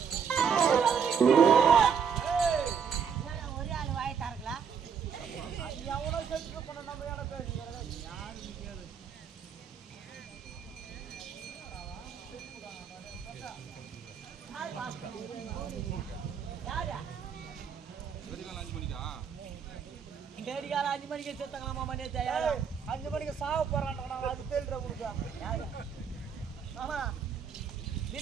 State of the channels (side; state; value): left; quieter; 6.8 dB